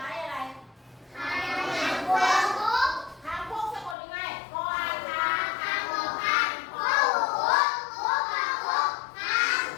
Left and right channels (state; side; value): drops out; right; at 4.0 s